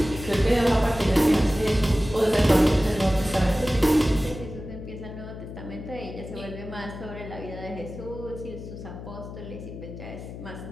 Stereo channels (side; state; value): left; noise; hum, 11 dB below the sound